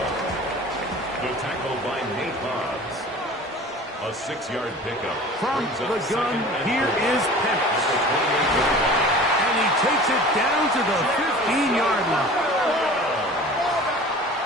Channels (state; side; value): normal; both; correlation 0.41